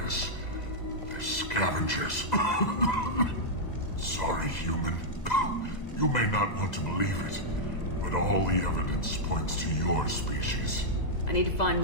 this. They're scavengers. Sorry, human. You may not want to believe it, but all the evidence points to your species. I need to find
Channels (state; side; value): late; right; 2.0 ms